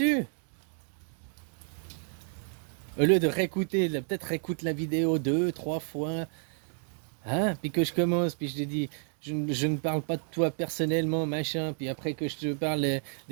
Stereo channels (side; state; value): left; silent; 57 dB below the other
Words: Au lieu de réécouter, peut-être réécoute la vidéo 2, 3 fois, hein, puis que je commence, puis je te dis, je ne parle pas de toi personnellement, machin, puis après que je te parle